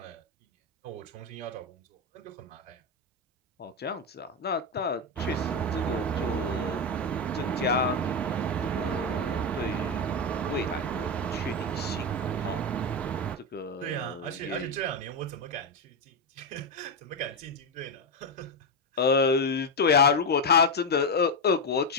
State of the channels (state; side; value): normal; both; correlation 0.09